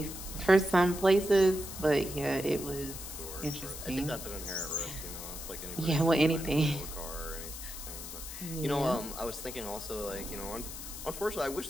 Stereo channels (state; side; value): noise; left; hiss, 9 dB below the sound